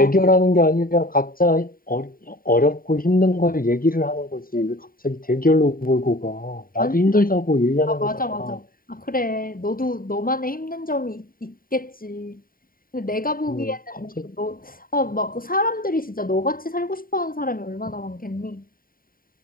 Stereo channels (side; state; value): right; late; 0.41 ms